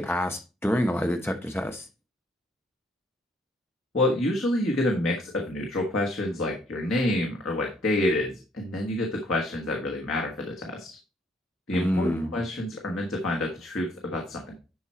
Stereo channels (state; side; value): normal; both; correlation 0.66